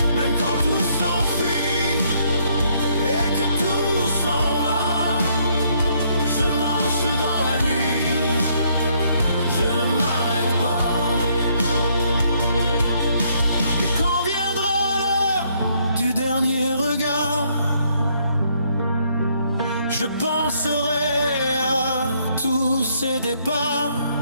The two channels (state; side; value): inverted; both; correlation -0.69